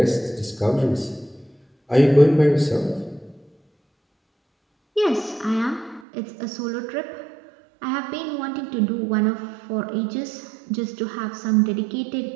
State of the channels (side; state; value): left; drops out; at 6.0 s